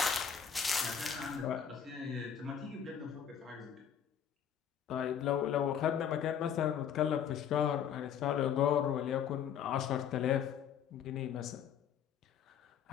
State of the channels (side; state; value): right; quieter; 8.3 dB